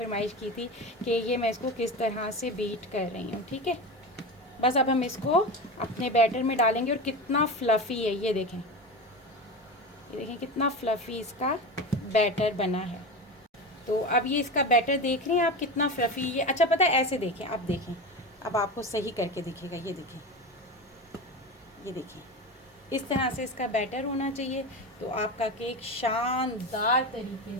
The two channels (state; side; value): normal; both; correlation 0.24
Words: की थी कि ये मैं इसको किस तरह से बीट कर रही हूँ। ठीक है, बस अब हम इसको अपने बैटर में डालेंगे। और कितना फ्लफ़ी है, ये देखें, ये देखें कितना फ्लफ़ी इसका बैटर बना है। तो अब ये इसका बैटर देख रहे हैं आप कितना फ्लफ़ी ये। अच्छा पता है, ऐसे देखें, अब देखें, अब आपको सही करके दिखेगा। ये देखें, ये देखिए, इस तरह से इसका बैटर होना चाहिए। तो आपका केक शानदार तरीके